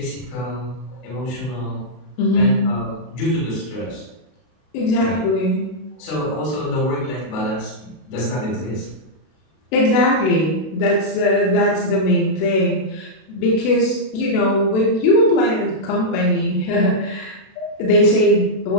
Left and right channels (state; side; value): late; right; 32 ms